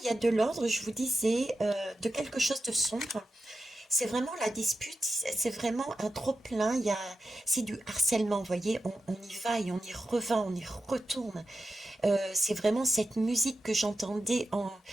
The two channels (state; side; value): normal; both; correlation 0.89